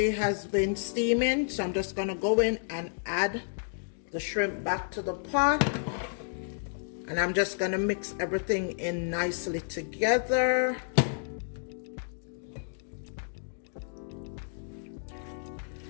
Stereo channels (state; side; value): silent; right; digital silence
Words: has been steaming. So I'm just gonna go in and add the shrimp back to the pot. And I'm just gonna mix everything in nicely together.